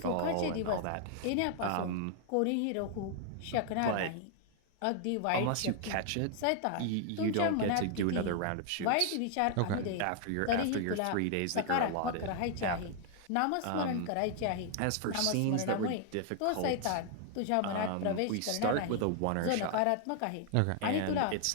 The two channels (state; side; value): different; both; correlation 0.00